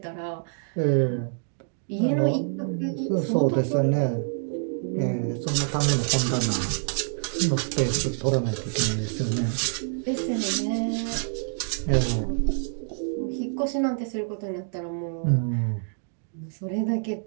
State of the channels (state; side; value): silent; left; digital silence